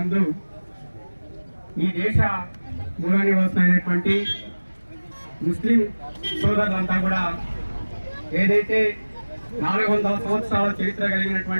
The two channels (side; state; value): both; inverted; correlation -1.00